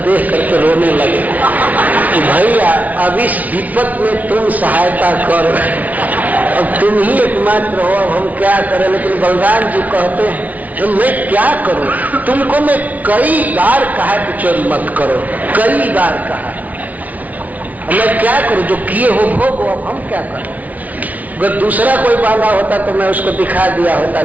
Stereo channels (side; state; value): left; late; 0.073 ms